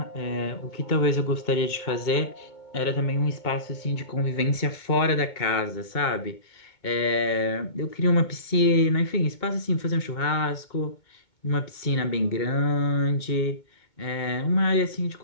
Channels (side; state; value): right; late; 2.2 ms